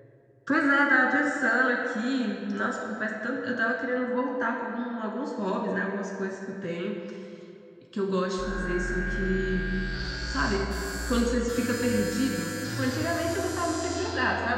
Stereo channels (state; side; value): identical; both; correlation 1.00